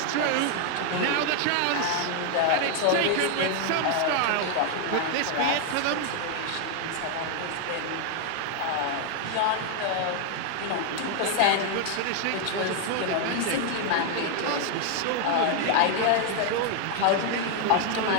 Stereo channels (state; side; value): different; both; correlation 0.00